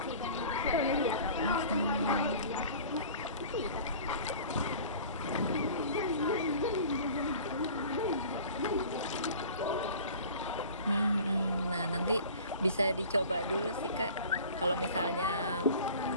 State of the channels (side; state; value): both; inverted; correlation -0.44